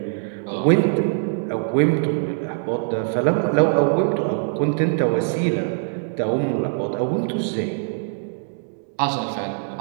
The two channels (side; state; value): left; silent; digital silence